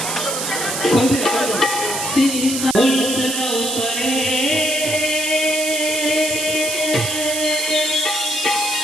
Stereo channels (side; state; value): right; noise; hiss, 3 dB below the sound